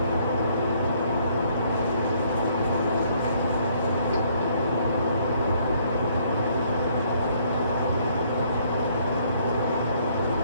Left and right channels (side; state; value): both; inverted; correlation -0.66